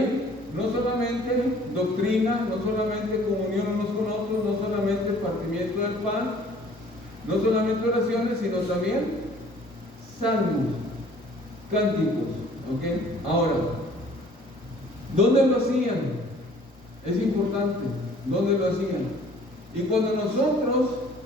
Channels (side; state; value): both; normal; correlation 0.54